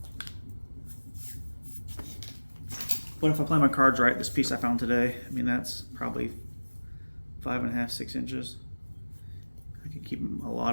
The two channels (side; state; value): both; inverted; correlation -1.00